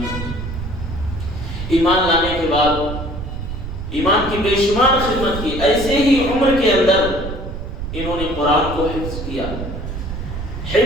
ایمان لانے کے بعد ایمان کی بے شمار خدمت کی، ایسے ہی عمر کے اندر انہوں نے قرآن کو حفظ کیا۔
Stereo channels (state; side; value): noise; right; rumble, 7 dB below the sound